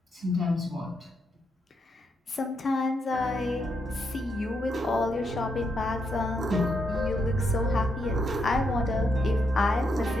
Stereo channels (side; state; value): both; normal; correlation 0.80